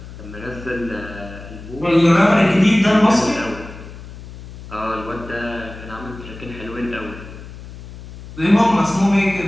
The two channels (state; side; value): noise; left; hum, 15 dB below the sound